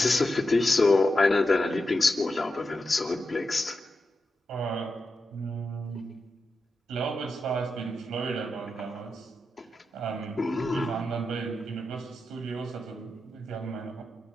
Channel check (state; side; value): normal; both; correlation 0.89